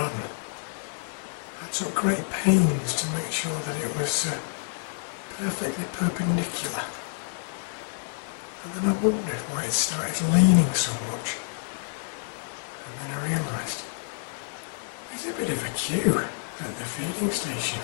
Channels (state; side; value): silent; right; digital silence